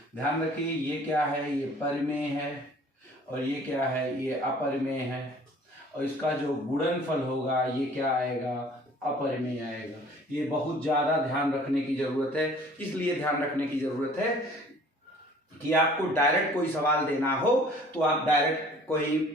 ध्यान रखिए ये क्या है, ये परिमेय है और ये क्या है, ये अपरिमेय है, और इसका जो गुणनफल होगा ये क्या आएगा, अपरिमेय आएगा। ये बहुत ज़्यादा ध्यान रखने की ज़रूरत है। इसलिए ध्यान रखने की ज़रूरत है कि आपको डायरेक्ट कोई सवाल देना हो तो आप डायरेक्ट कोई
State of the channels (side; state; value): both; normal; correlation 0.52